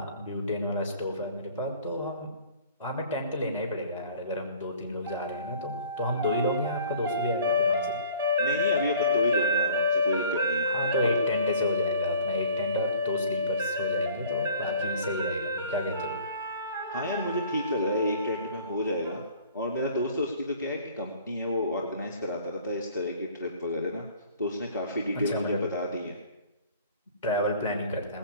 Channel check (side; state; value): both; inverted; correlation -0.51